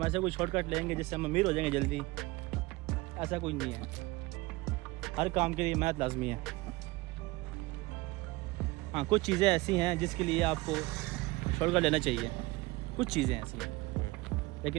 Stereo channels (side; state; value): left; quieter; 21.7 dB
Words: ایسا کوئی شارٹ کٹ لیں گے جس سے ہم امیر ہو جائیں گے جلدی, ایسا کوئی نہیں ہے. ہر کام کے لیے محنت لازمی ہے. ہاں کچھ چیزیں ایسی ہیں جس کے لیے آپ کو شارٹ کٹ لینا چاہیے, کچھ چیزیں ایسی ہیں.